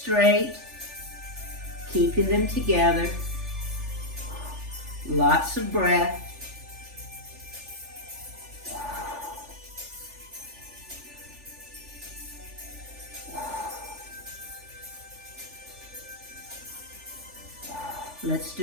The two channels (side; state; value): left; late; 3.4 ms